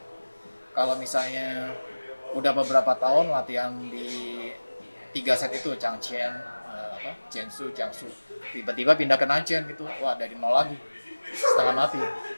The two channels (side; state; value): both; inverted; correlation -1.00